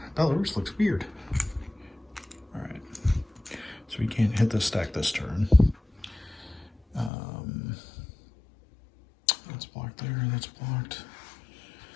Belarus looks weird. All right. So we can't hit this stack this turn. That's blocked there, that's blocked.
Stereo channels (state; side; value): drops out; right; at 7.1 s